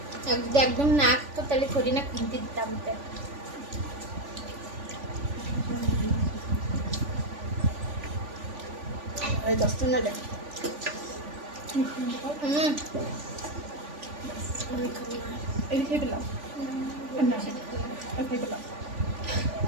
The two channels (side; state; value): left; late; 3.5 ms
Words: एकदम नाक तो तले थोड़ी ना किंती दिता मुझे। अरे दोस्तों ना जा। Okay, below. I'm not sure. Okay, below.